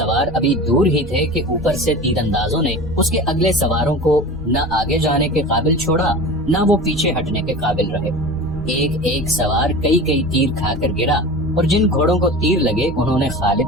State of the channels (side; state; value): both; normal; correlation 0.33